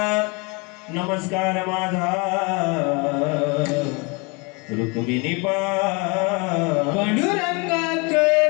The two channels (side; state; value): right; quieter; 29.7 dB